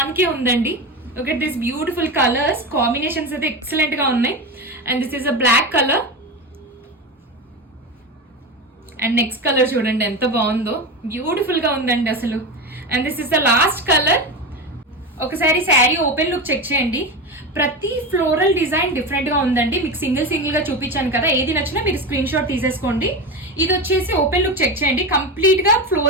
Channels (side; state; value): both; normal; correlation 0.21